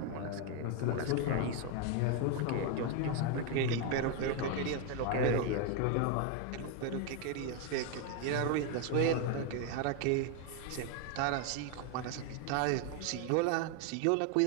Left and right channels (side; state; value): both; different; correlation 0.01